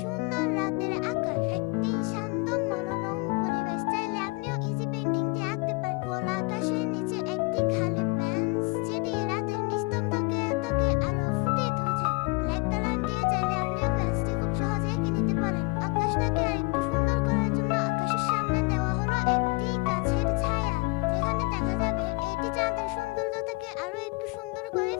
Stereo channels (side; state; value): right; quieter; 27.8 dB